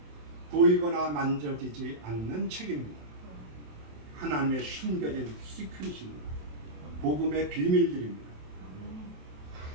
보이거나 만져지지 않는 책입니다. 하나님의 숨겨진 시크릿입니다. 복음의 비밀들입니다.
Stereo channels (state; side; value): late; left; 27 ms